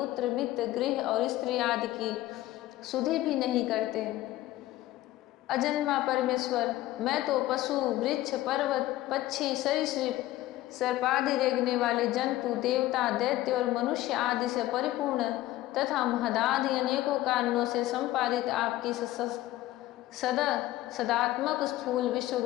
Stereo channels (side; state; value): right; quieter; 15.9 dB